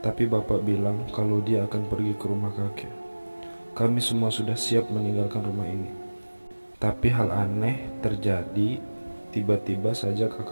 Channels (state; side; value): inverted; both; correlation -1.00